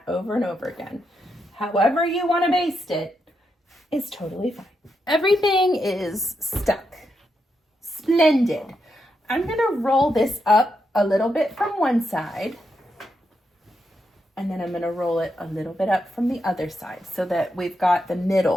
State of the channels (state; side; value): normal; both; correlation 0.83